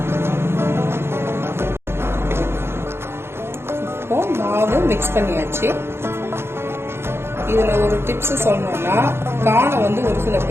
மாவு மிக்ஸ் பண்ணியாச்சு. இதுல ஒரு டிப்ஸ் சொல்லணும்னா, கார்னை வந்து ஒரு சில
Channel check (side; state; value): left; late; 0.12 ms